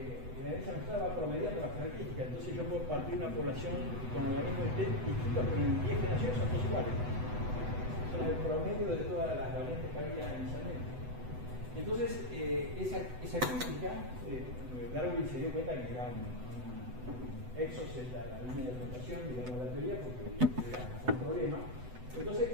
la herencia mezclada va promediando las características, entonces yo puedo partir una población con organismos distintos, pero en 10 generaciones son todos iguales. Son el promedio de todas las variantes que había inicialmente. Entonces, esa crítica, Darwin se dio cuenta que era un exos en la línea de rotación, digamos, de la teoría, porque era un problema. Entonces,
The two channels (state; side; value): late; left; 8.0 ms